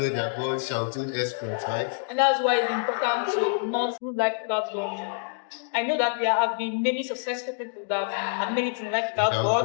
their God shall do exploits, right? And that's why it's important to not do like that. I know that there have been many successful people that have made it in life without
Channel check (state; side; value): silent; right; 60 dB below the other